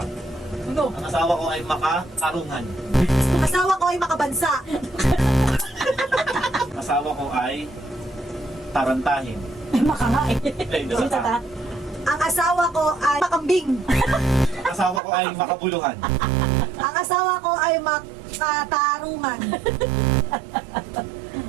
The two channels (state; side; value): drops out; left; at 15.0 s